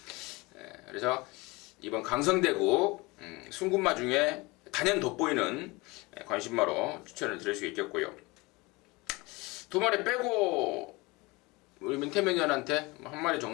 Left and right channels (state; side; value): quieter; right; 24.0 dB